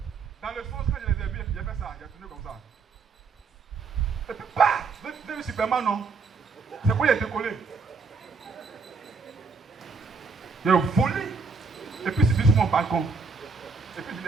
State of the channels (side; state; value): left; quieter; 4.8 dB